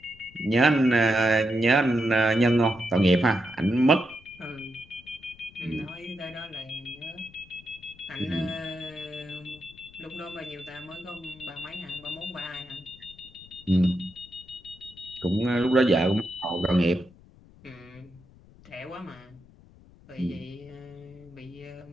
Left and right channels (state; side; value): noise; left; rumble, 24 dB below the sound